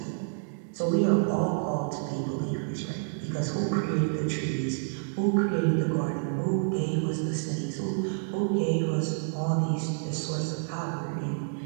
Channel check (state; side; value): silent; left; 59 dB below the other